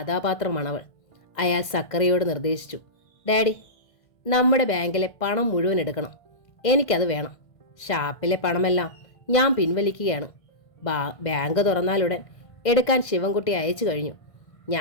അയാൾ സക്കറിയോട് നിർദ്ദേശിച്ചു. ഡാഡി, നമ്മുടെ ബാങ്കിലെ പണം മുഴുവൻ എടുക്കണം. എനിക്കത് വേണം. ഷാപ്പിലെ പണമെല്ലാം ഞാൻ പിൻവലിക്കുകയാണ്. ബാങ്ക് തുറന്നാലുടൻ എടുക്കാൻ ശിവൻകുട്ടി അയച്ചു കഴിഞ്ഞു.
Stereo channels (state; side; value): late; right; 1.5 ms